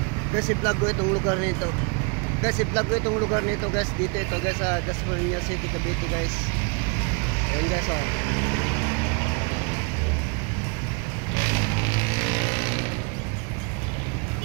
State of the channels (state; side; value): quieter; left; 34.4 dB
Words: Guys, i-vlog ko itong lugar nito. Guys, i-vlog ko itong lugar nito guys. Dito ito guys sa Dasmariñas City, Cavite guys. Ayan guys oh.